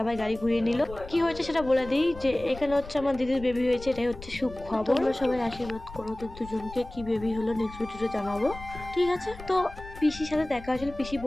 গাড়ি ঘুরিয়ে নিল। কি হয়েছে সেটা বলে দিই, যে এখানে হচ্ছে আমার দিদির বেবি হয়েছে, এটাই হচ্ছে সুখবর। তোমরা সবাই আশীর্বাদ করো ওদের দুজনকে, কি বেবি হলো নেক্সট ভিডিওতে জানাবো, ঠিক আছে? তো পিসির সাথে দেখা হয়েছিল, পিসি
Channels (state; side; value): noise; left; rumble, 15 dB below the sound